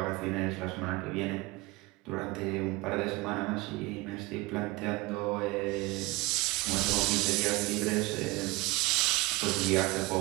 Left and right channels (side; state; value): left; quieter; 22.9 dB